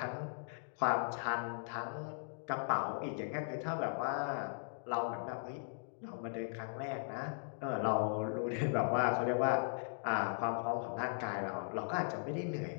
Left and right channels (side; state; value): right; silent; digital silence